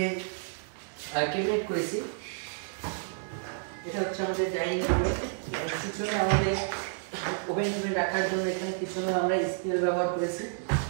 ক্যাবিনেট করেছি। এটা হচ্ছে আমাদের ডাইনিং রুমে। পিছনে আমাদের ওভেন টোভেন রাখার জন্য এখানে পিছনে আমরা এসপিএল ব্যবহার করেছি।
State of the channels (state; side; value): silent; left; digital silence